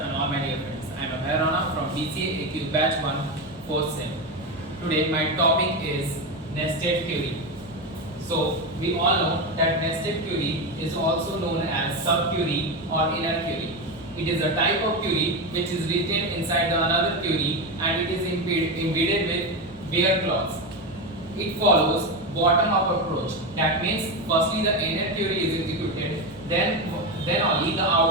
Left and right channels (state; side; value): normal; both; correlation 0.15